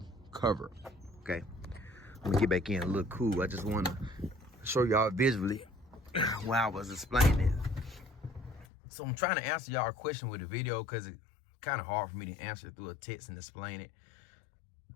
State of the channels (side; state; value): right; drops out; at 8.7 s